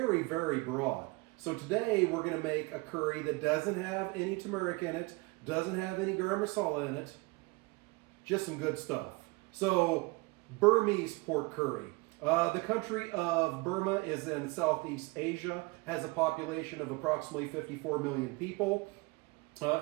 very broad. So today we're going to make a curry that doesn't have any turmeric in it, doesn't have any garam masala in it, just some good stuff. So Burmese pork curry. The country of Burma is in Southeast Asia, has a population of approximately 54 million people.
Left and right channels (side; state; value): left; quieter; 26.1 dB